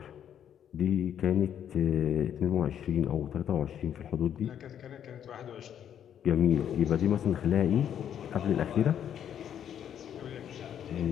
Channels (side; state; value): right; quieter; 9.4 dB